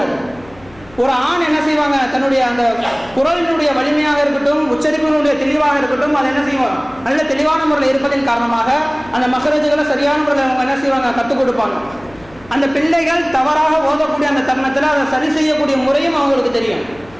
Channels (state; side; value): noise; left; hum, 25 dB below the sound